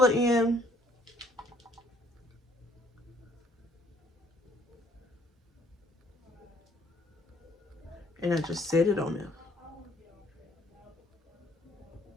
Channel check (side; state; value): both; normal; correlation 0.63